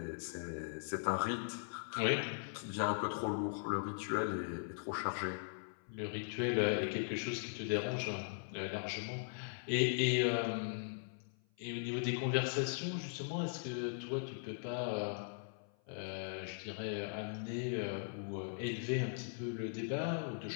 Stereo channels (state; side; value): silent; right; 51 dB below the other